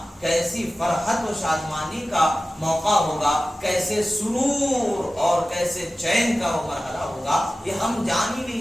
کیسی فرحت و شادمانی کا موقع ہوگا، کیسے سرور اور کیسے چین کا وہ مرحلہ ہوگا، یہ ہم جان ہی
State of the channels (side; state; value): both; normal; correlation 0.96